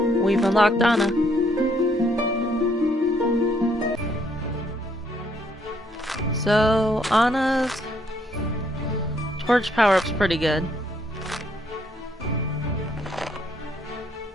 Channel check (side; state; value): both; normal; correlation 0.70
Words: We've unlocked Anna. So, Anna's torch power-up's pretty good.